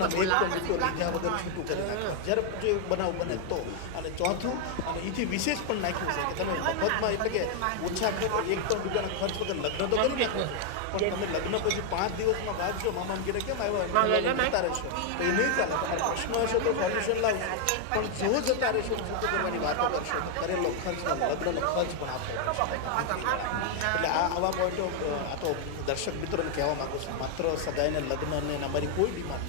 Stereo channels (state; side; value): different; both; correlation 0.00